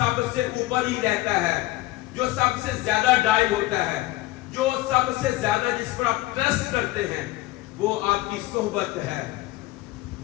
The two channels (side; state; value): right; quieter; 17.9 dB